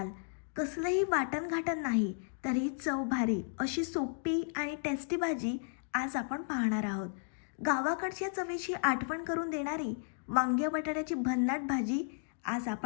कसलंही वाटण घाटण नाही, तरी चव भारी अशी सोपी आणि टेस्टी भाजी आज आपण पाहणार आहोत. गावाकडच्या चवीची आठवण करून देणारी वांग्या बटाट्याची भन्नाट भाजी आज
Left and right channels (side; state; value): right; silent; digital silence